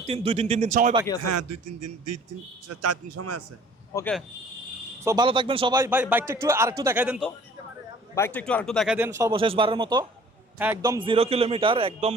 2-3 দিন সময় বাকি আছে। হ্যাঁ 2-4 দিন সময় আছে। ওকে, সো ভালো থাকবেন সবাই। ভাই বাইকটা আরেকটু দেখাই দেন তো, বাইকটা আরেকটু দেখাই দেন সর্বশেষবারের মতো। হ্যাঁ, একদম 0 কিলোমিটার, একদম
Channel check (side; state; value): both; normal; correlation 0.52